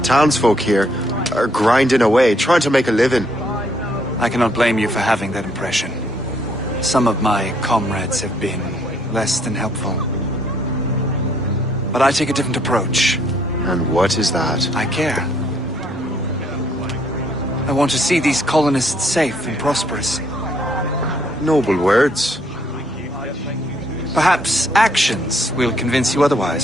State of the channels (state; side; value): normal; both; correlation 0.68